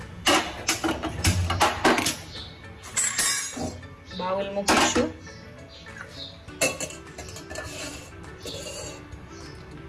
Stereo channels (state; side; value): identical; both; correlation 1.00